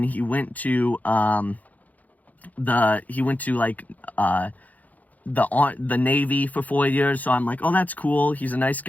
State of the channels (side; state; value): right; late; 0.078 ms